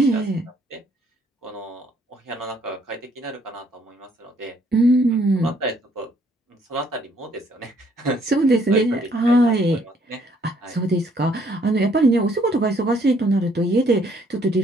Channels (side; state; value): both; normal; correlation 0.66